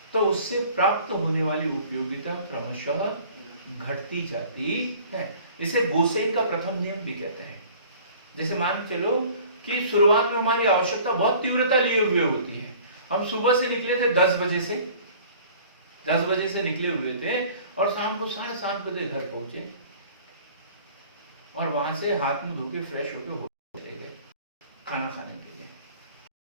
तो उससे प्राप्त होने वाली उपयोगिता क्रमशः घटती जाती है। इसे गोसेन का प्रथम नियम भी कहते हैं। जैसे मान चलो कि शुरुआत में हमारी आवश्यकता बहुत तीव्रता लिए हुए होती है। हम सुबह से निकले थे 10 बजे से, 10 बजे से निकले हुए थे और शाम को 7:30 बजे घर पहुंचे और वहां से हाथ मुंह धो के फ्रेश होके चले गए खाना खाने के लिए।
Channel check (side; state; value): both; inverted; correlation -0.49